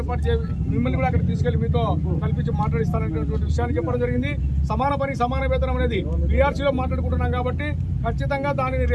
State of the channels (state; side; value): identical; both; correlation 1.00